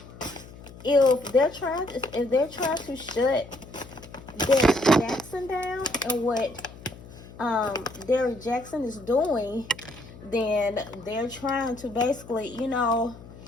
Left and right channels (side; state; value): left; noise; hum, 18 dB below the sound